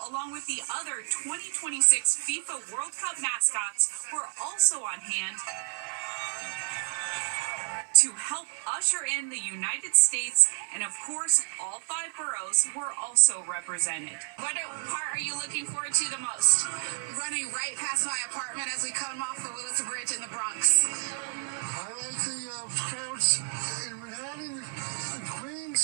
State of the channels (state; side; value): silent; left; digital silence